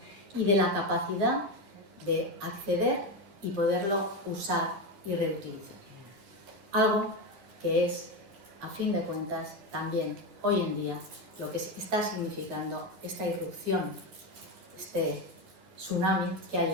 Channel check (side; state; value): left; late; 10 ms